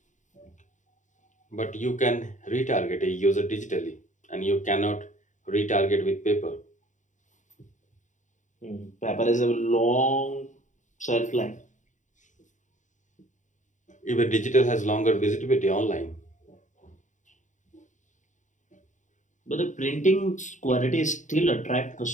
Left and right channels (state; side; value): late; right; 0.36 ms